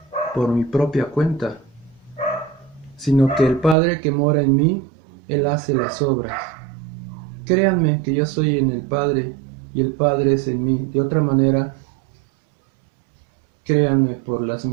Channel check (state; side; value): drops out; left; at 3.8 s